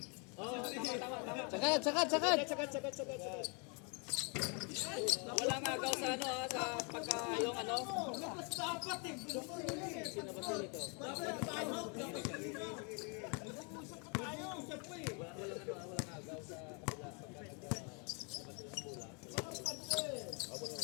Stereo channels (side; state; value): right; quieter; 35.4 dB